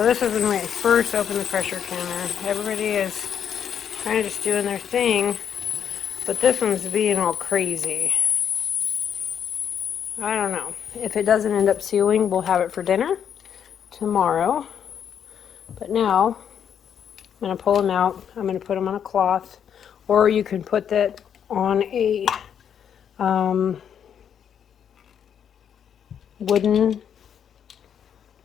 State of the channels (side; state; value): right; quieter; 8.4 dB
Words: this is when I first opened the pressure canner. Everybody is kind of just doing their thing, but this one's being all crazy. I don't know. If it doesn't end up sealing, we'll have it for dinner tomorrow. But now, I'm going to pull them out. I'm going to put them on a cloth, or you can put that on a wooden